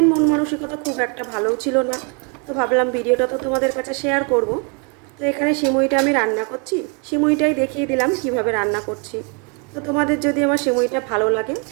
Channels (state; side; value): quieter; left; 36.1 dB